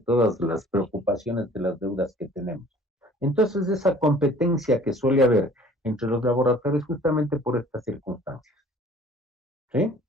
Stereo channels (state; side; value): normal; both; correlation 0.51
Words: las preocupaciones de las deudas que tenemos. Entonces, esa competencia que suele haber entre los laboratorios justamente por estas circunstancias. ¿Sí?